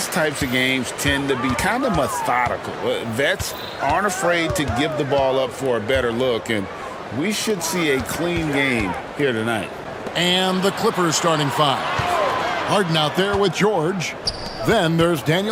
types of games tend to be kind of methodical. Vets aren't afraid to give the ball up for a better look, and we should see a clean game here tonight. And the Clippers starting five. Harden out there with George. Then there's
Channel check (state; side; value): identical; both; correlation 1.00